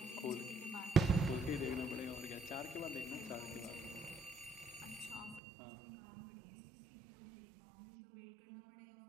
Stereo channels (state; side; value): drops out; left; at 5.4 s